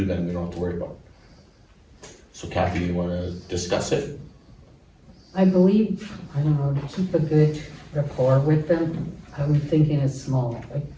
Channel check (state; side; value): identical; both; correlation 1.00